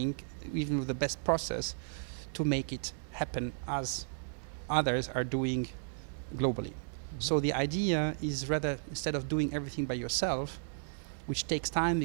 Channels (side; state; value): left; silent; digital silence